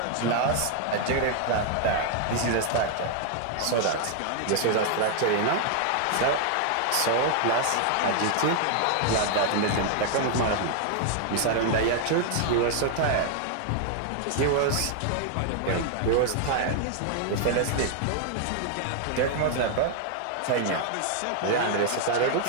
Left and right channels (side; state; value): both; different; correlation 0.00